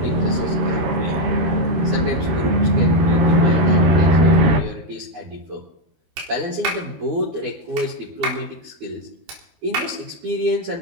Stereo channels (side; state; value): left; late; 13 ms